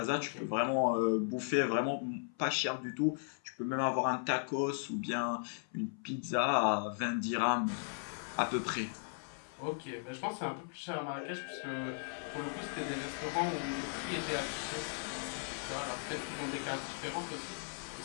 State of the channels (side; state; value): right; silent; 53 dB below the other